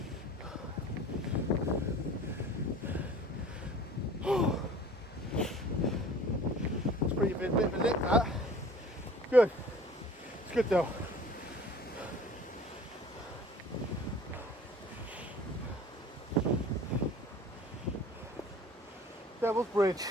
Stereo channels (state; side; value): normal; both; correlation 0.47